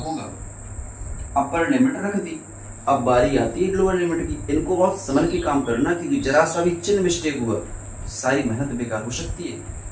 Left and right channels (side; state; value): both; identical; correlation 1.00